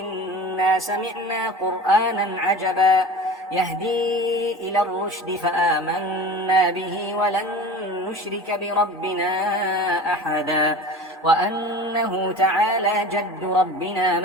سمعنا قرآنا عجبا يهدي إلى الرشد فآمنا به ولن نشرك بربنا أحدا وأنه تعالى جد ربنا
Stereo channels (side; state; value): both; normal; correlation 0.36